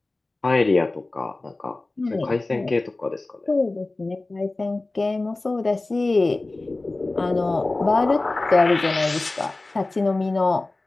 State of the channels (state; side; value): quieter; right; 3.1 dB